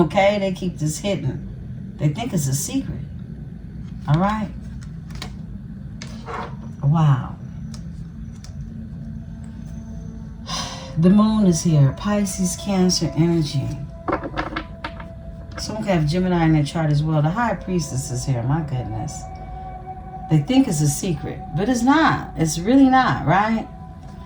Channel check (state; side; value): identical; both; correlation 1.00